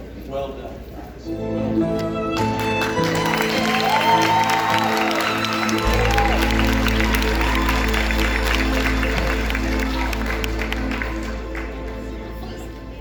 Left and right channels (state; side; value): identical; both; correlation 1.00